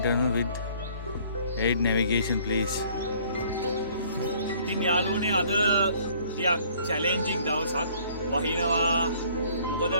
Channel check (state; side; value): inverted; both; correlation -0.58